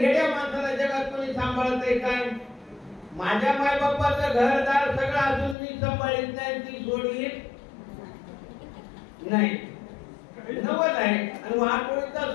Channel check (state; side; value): drops out; right; at 5.6 s